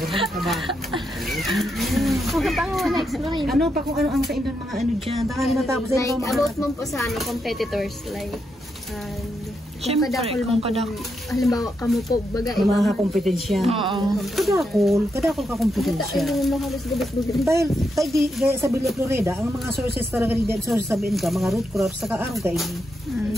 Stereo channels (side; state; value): both; normal; correlation 0.82